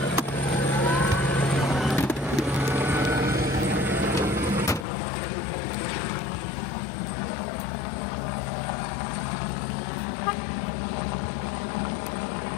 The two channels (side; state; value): right; drops out; at 4.9 s